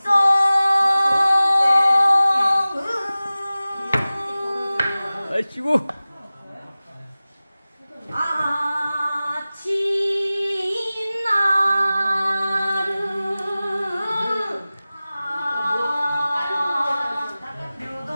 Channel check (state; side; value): inverted; both; correlation -0.97